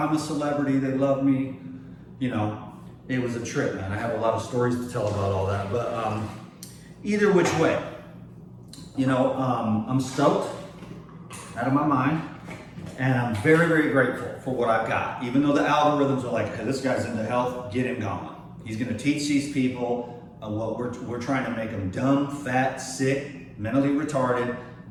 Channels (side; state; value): both; identical; correlation 1.00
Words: a celebrity, they love me. You know, it was a trip, man. I have a lot of stories to tell about all that. But either which way, you know, I'm stoked out of my mind. And I'm very, very grateful for what I've got. Even though the algorithms are like, hey, this guy's into health, get him going. He's gonna teach these people what we're trying to make them dumb, fat, sick, mentally retarded,